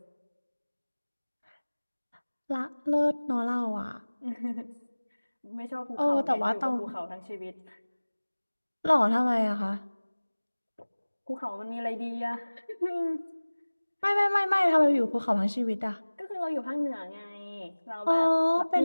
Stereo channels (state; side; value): inverted; both; correlation -1.00